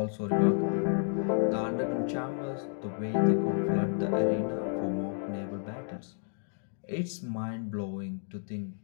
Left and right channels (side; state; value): right; silent; digital silence